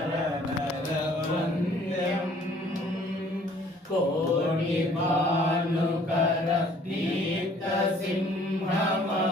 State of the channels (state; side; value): normal; both; correlation 0.57